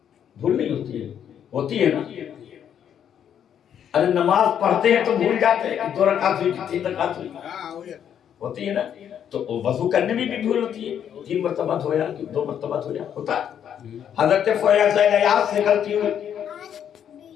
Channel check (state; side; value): quieter; right; 9.1 dB